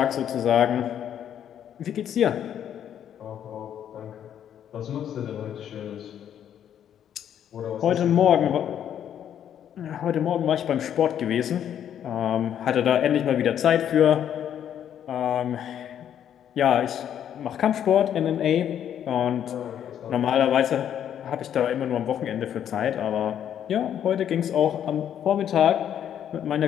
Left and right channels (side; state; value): right; quieter; 9.7 dB